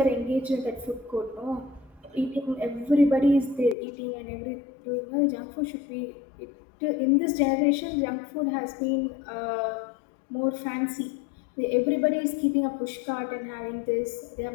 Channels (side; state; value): right; drops out; at 3.8 s